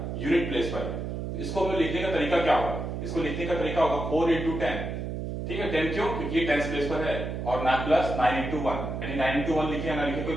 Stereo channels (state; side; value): noise; right; hum, 4 dB below the sound